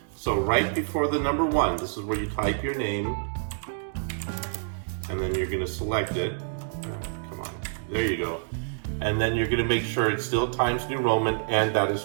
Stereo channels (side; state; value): left; silent; digital silence